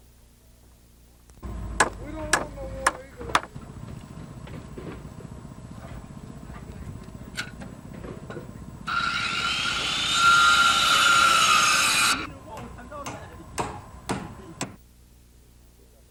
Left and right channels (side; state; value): both; identical; correlation 1.00